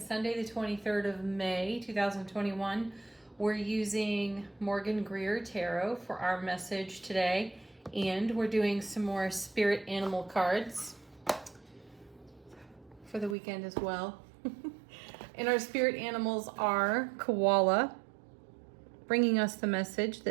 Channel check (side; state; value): left; drops out; at 13.4 s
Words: Sunday the 23rd of May 2021. We're using Morgan Greer Tarot for our message today, and we're doing some more spirit animal cards for the weekend as well. And our spirit animals are koala, bringing us the message